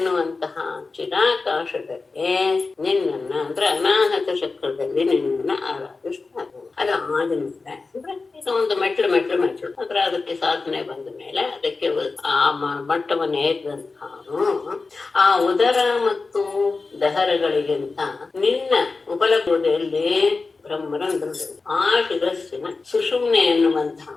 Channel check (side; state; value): right; quieter; 4.0 dB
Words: ಚಿರಾಕಾಶದಲ್ಲಿ ನಿನ್ನನ್ನ ಅಂದ್ರೆ ಅನಾಹತ ಚಕ್ರದಲ್ಲಿ ನಿನ್ನನ್ನ ಆರಾಧಿಸ್ತಾರೆ. ಅದು ಆದ್ಮೇಲೆ ಅಂದ್ರೆ ಒಂದು ಮೆಟ್ಲು ಅಂದ್ರೆ ಅದಕ್ಕೆ ಸಾಧನೆ ಬಂದ ಮೇಲೆ ಅದಕ್ಕೆ ಆ ಮಟ್ಟವನ್ನು ಏರಿದಂತಹ ಆ ಉದರ ಮತ್ತು ದಹರಗಳಿಗಿಂತ ನಿನ್ನ ಉಪಲಬ್ಧಿಯಲ್ಲಿ ಬ್ರಹ್ಮರಂಧ್ರದಲ್ಲಿ ಆ ಶಿರಸ್ಸಿನ ಸುಷುಮ್ನೆ ಎನ್ನುವಂತಹ